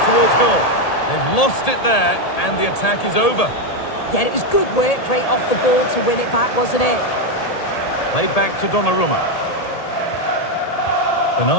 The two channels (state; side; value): late; right; 1.8 ms